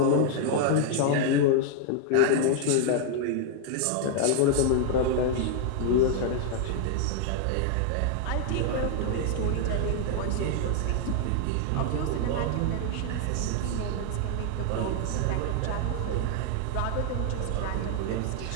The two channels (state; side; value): different; both; correlation 0.00